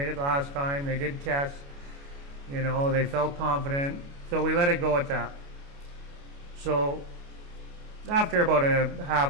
it last time. They did tests. They felt confident. So we let it go at that. So after about a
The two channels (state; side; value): late; left; 29 ms